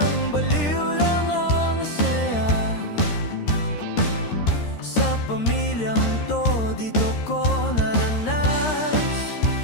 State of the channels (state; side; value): late; right; 13 ms